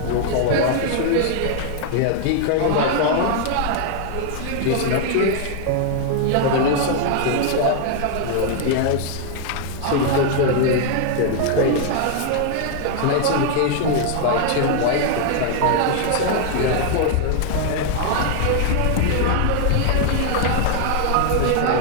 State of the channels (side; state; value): both; different; correlation 0.00